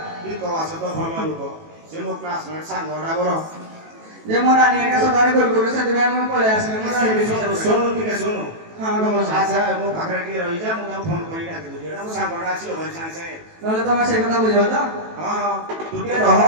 ई तो आसे तो भलो लोक से मो क्लासमेट सांग राबर जे मोरा नियर का सदारे गोल गोल से दिबे हम पळे आसले मोरा हिबे सुनो ठीक है सुनो हाँ का मौसा अच्छा मो पाखरे की रही जा मु फोन करी डाकी दो जेडा मो सांगडा आसी होय सांग से नले तमे से कथा बुझियो त हां हां तू के रह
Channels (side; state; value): left; late; 18 ms